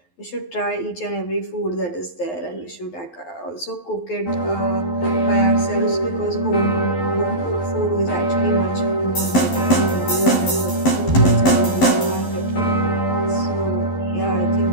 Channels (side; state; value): right; late; 12 ms